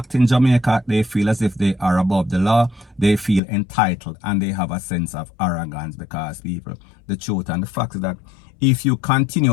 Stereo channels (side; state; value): right; drops out; at 3.4 s